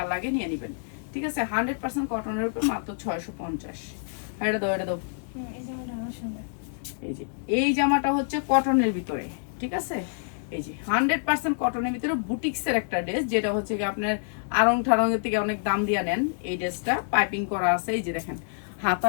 লাগে নিয়ে নেবেন। ঠিক আছে, 100% কটনের উপর মাত্র 650। এটা দাও, এটা দাও। এই যে এই জামাটা হচ্ছে কটনের ভিতরে। ঠিক আছে, এই যে 100% কটনের ভিতরে বুটিক্সের একটা ড্রেস, যেটা হচ্ছে কি আপনার আড়ং ঠাড়ঙের থেকে অনেক দাম দিয়ে নেন। এই ড্রেসটা পাইপিং করা আছে, এই যে দেখেন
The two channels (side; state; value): right; silent; digital silence